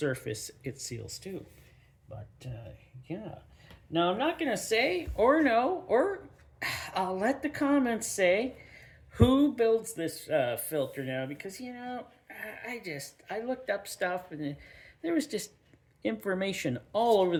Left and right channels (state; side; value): identical; both; correlation 1.00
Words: it seals to. But yeah, now I'm not gonna say or no, or I'll let the comments say who builds this filter now, because I looked up stuff and there was just information all over